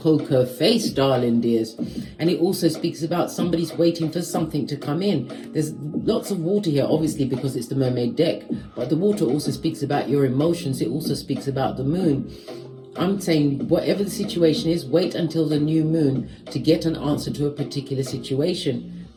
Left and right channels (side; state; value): both; identical; correlation 1.00